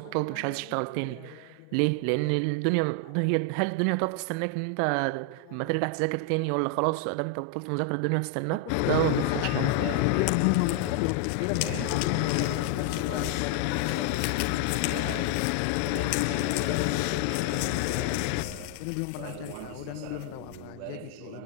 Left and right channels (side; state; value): both; different; correlation 0.00